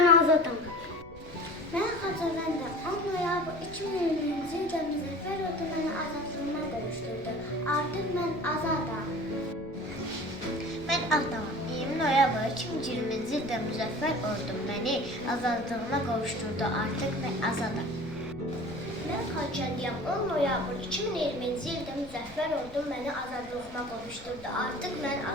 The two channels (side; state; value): left; noise; rumble, 19 dB below the sound